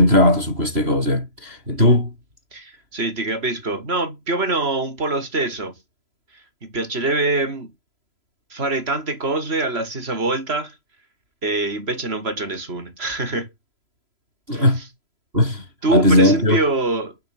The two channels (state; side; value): late; left; 3.0 ms